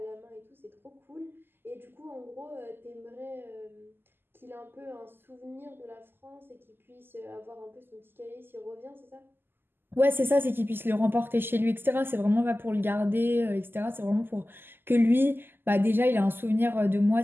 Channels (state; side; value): late; left; 0.10 ms